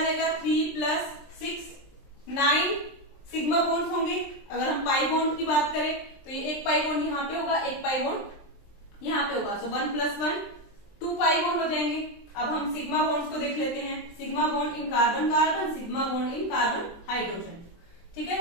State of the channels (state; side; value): late; right; 23 ms